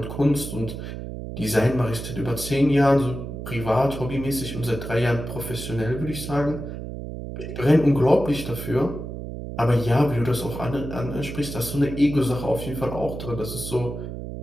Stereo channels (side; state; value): right; noise; hum, 8 dB below the sound